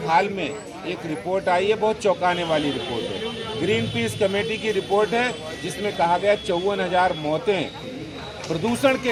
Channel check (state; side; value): identical; both; correlation 1.00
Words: हाल में एक रिपोर्ट आई है, बहुत चौंकाने वाली रिपोर्ट है, ग्रीन पीस कमेटी की रिपोर्ट है, जिसमें कहा गया 54,000 मौतें प्रदूषण